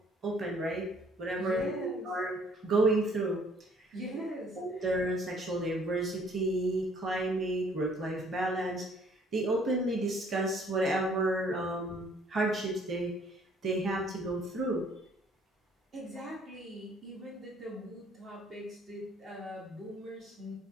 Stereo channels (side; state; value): both; normal; correlation 0.60